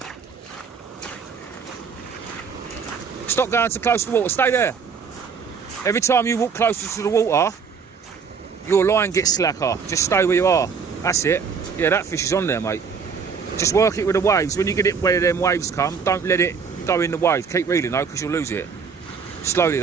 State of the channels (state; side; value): quieter; left; 5.8 dB